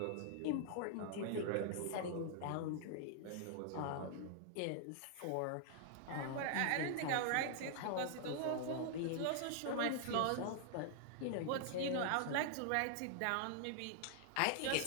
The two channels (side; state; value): both; different; correlation -0.01